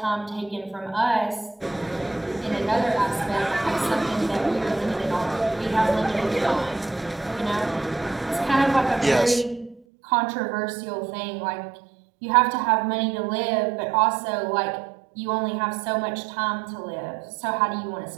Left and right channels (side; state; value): left; drops out; at 9.8 s